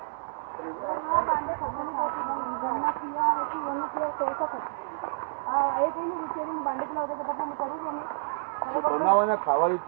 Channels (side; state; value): left; silent; digital silence